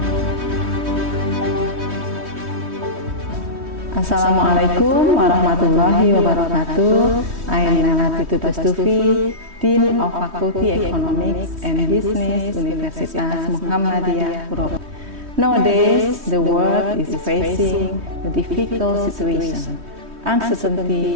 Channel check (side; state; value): left; late; 3.1 ms